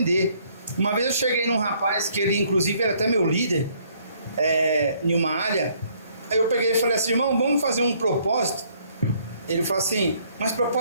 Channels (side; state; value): both; inverted; correlation -0.64